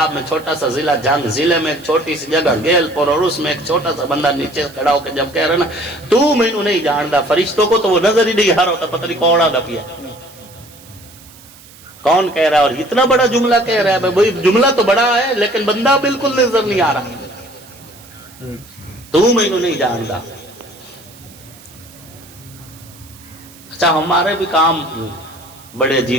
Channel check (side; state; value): right; noise; hiss, 22 dB below the sound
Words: میں چھوٹا سا ضلع جنگ, ضلع میں ایک چھوٹی سی جگہ گیل پور, اور اس میں ایک چھوٹا سا بندہ نیچے کھڑا ہو کے جب کہہ رہا نا تو مینوں نہیں جاندا, فرشتوں کو تو وہ نظر ہی نہیں آ رہا ہوتا, پتہ نہیں کوڑا دپیا کون کہہ رہا ہے. اور اتنا بڑا جملہ کہہ رہا ہے, بھائی جملہ تو بڑا ہے لیکن بندہ بالکل نظر نہیں آ رہا. تو مینوں نہیں جاندا. اچھا ہمارے بھی کام بڑے